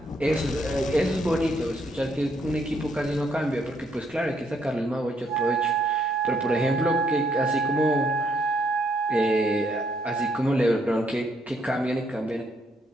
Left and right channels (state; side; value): normal; both; correlation 0.71